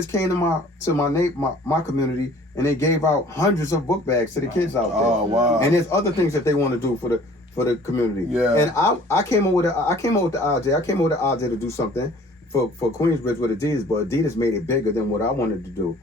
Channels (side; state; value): both; normal; correlation 0.51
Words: came to my community and they gave out hundreds of book bags to the kids out there. Oh wow. And there's other things that they want to do for the community. Yeah. And I came up with the idea. I came up with the idea to do something for Queensbridge with Adidas, but Adidas made it bigger than what I wanted to do.